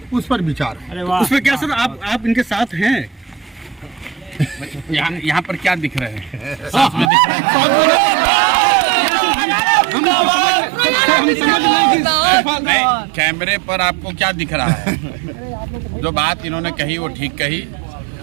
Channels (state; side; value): drops out; left; at 7.1 s